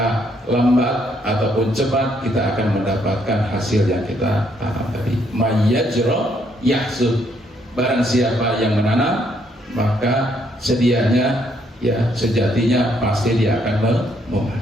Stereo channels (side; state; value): both; normal; correlation 0.71